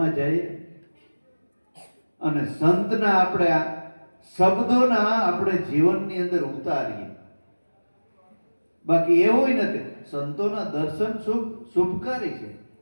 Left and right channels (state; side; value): inverted; both; correlation -1.00